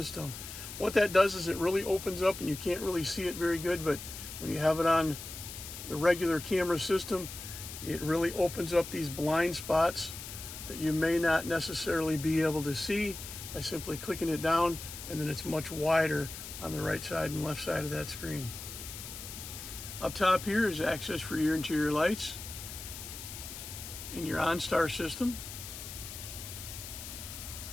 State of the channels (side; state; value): left; noise; hiss, 10 dB below the sound